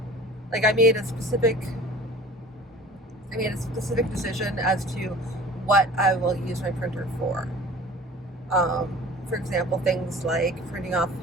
like, I made a specific decision as to what I will use my printer for. For example, things like printing off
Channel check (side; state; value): both; normal; correlation 0.43